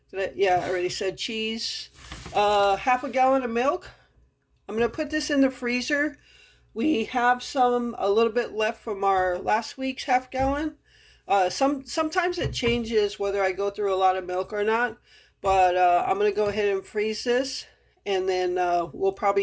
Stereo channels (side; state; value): both; identical; correlation 1.00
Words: Yeah, I already said cheese. Half a gallon of milk. I'm going to put this in the freezer. We have a little bit left from our last week's half gallon. Sometimes it changes whether I go through a lot of milk or not. But I'm going to go ahead and freeze this. And then we'll